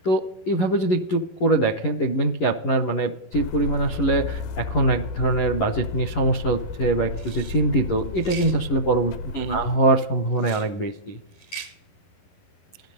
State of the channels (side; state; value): right; late; 11 ms